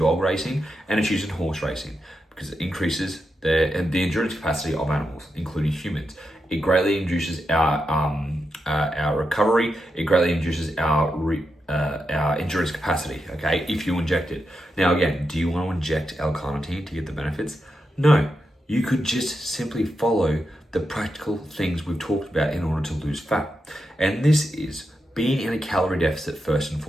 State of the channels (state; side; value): normal; both; correlation 0.86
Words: racing and it's used in horse racing because it increases the endurance capacity of animals, including humans. It greatly induces our recovery. It greatly induces our endurance capacity, okay, if you inject it. Now again, do you want to inject L-carnitine to get the benefits? No, you could just simply follow the practical things we've talked about in order to lose fat. And this is being in a calorie deficit first and